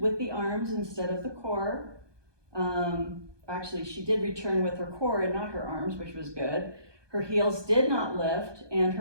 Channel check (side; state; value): left; late; 1.2 ms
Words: the arms instead of the core. Actually, she did return with her core and not her arms, which was good. Her heels did not lift, and